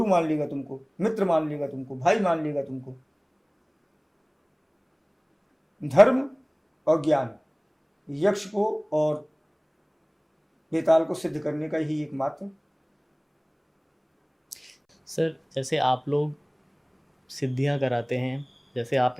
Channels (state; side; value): identical; both; correlation 1.00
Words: मान लेगा तुमको, मित्र मान लेगा तुमको, भाई मान लेगा तुमको। धर्म और ज्ञान यक्ष को और बेताल को सिद्ध करने का ही एकमात्र। सर, जैसे आप लोग सिद्धियां कराते हैं, जैसे